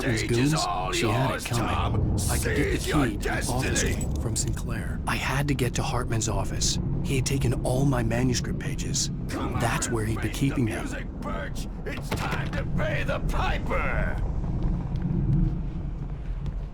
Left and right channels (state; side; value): identical; both; correlation 1.00